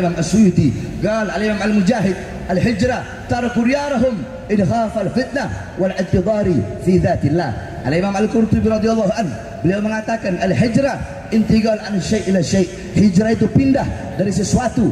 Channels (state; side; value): identical; both; correlation 1.00